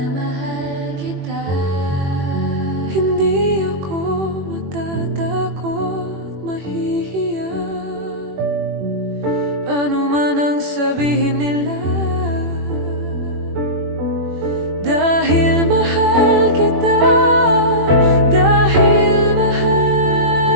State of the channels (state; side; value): late; left; 21 ms